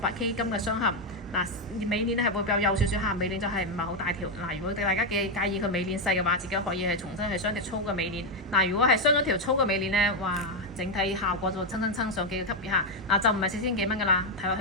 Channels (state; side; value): normal; both; correlation 0.04